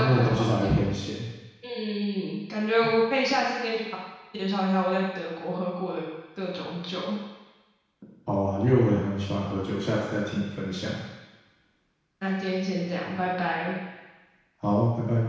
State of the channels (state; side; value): identical; both; correlation 1.00